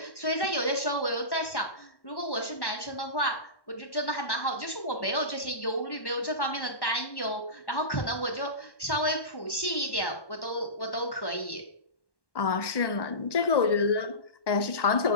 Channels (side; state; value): right; late; 1.1 ms